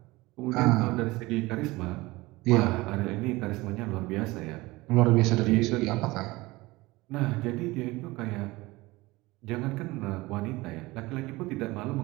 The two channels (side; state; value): left; quieter; 21.0 dB